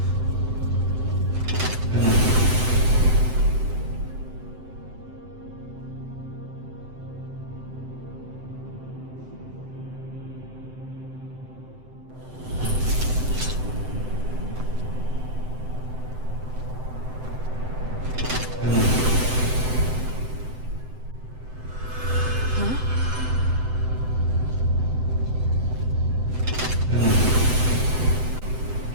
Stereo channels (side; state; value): left; late; 7.8 ms